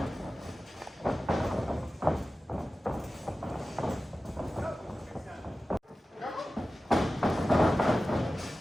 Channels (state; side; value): normal; both; correlation 0.95